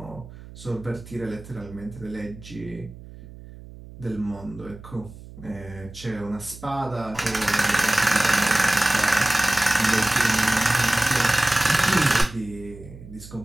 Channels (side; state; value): right; noise; hum, 17 dB below the sound